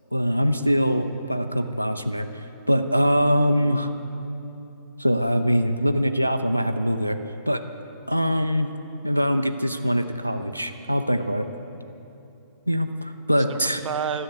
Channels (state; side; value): inverted; both; correlation -0.91